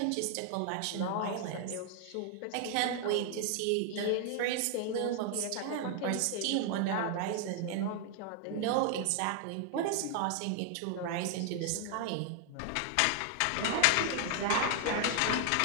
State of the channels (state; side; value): different; both; correlation 0.00